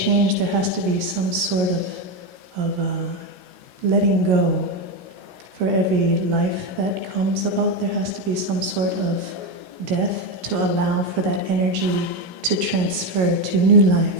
there has to be some sort of letting go. For every life that comes about, there has to be some sort of death to allow for that energy to transfer to new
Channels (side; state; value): left; late; 16 ms